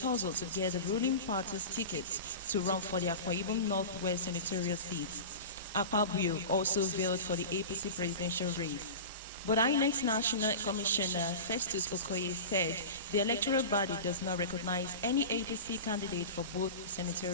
to get the ruling party's tickets to run for the Akwa Ibom Northwest Senatorial seat. Pabio also veiled for the APC presidential race. But INEC's National Commissioner Festus Okoye said the electoral body does not recognize any APC candidate for both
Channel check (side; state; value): both; inverted; correlation -0.30